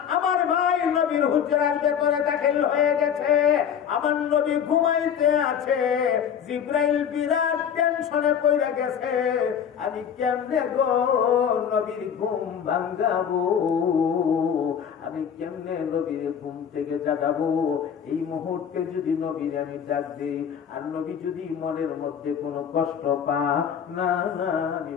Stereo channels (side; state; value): right; quieter; 8.1 dB